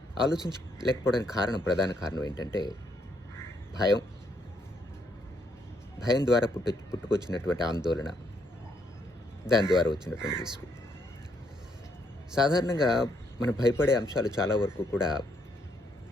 ఆలోచించలేకపోవడానికి ప్రధాన కారణం ఏంటంటే భయం. భయం ద్వారా పుట్టుకొచ్చినటువంటి ఆందోళన, దాని ద్వారా వచ్చినటువంటి విసుగు. సాధారణంగా మనం భయపడే అంశాలు చాలా వరకు కూడా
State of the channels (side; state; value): both; normal; correlation 0.73